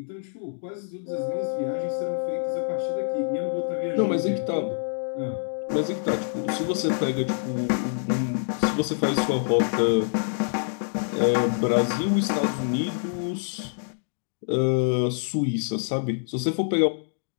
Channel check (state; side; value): silent; right; digital silence